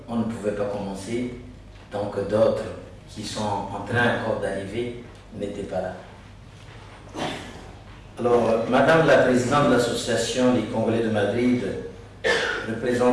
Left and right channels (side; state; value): both; identical; correlation 1.00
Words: on ne pouvait pas commencer tant que d'autres qui sont en train encore d'arriver n'étaient pas là. Alors, Madame la Présidente de l'Association des Congolais de Madrid,